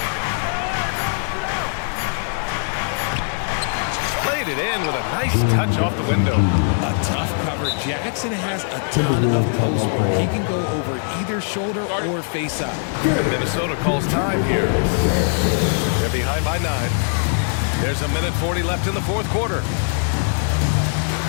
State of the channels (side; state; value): right; silent; 65 dB below the other